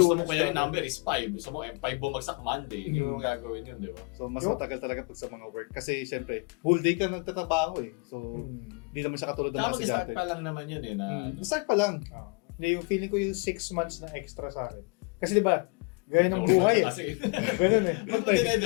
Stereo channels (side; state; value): right; quieter; 30.6 dB